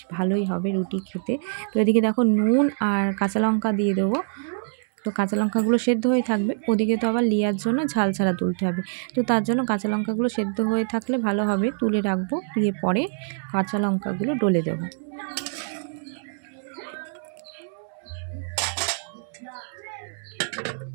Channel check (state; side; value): silent; left; 62 dB below the other